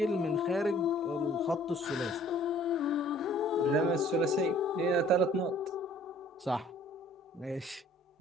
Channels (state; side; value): normal; both; correlation 0.55